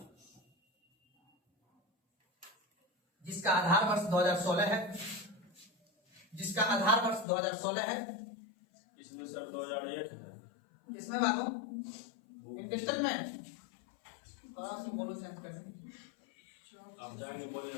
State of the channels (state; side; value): drops out; right; at 7.2 s